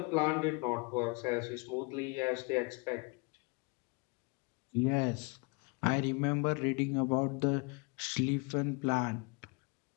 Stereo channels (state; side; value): quieter; right; 30.6 dB